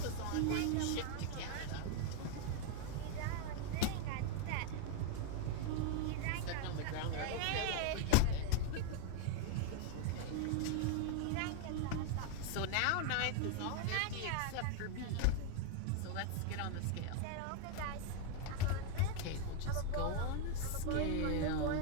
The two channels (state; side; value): different; both; correlation 0.01